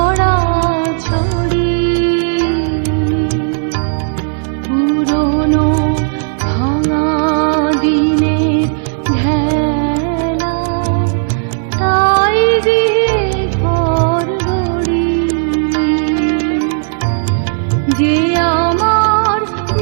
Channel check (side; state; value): left; silent; digital silence